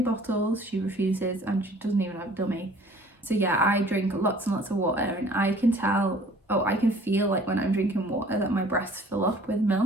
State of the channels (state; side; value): normal; both; correlation 0.52